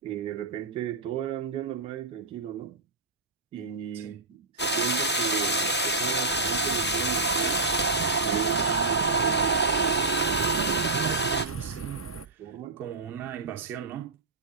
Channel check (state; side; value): quieter; left; 3.2 dB